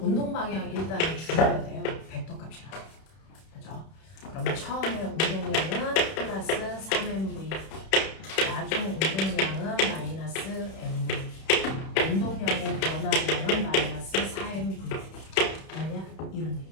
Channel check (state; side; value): late; right; 31 ms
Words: 방향 일단은 줄여야 돼요. 벡터 값이라. 그죠? 그러면 처음에 운동량은 플러스 3mv, 나중 운동량은 마이너스 mv, 운동량의 변화량은 마이너스 4mv. 아니야? 이런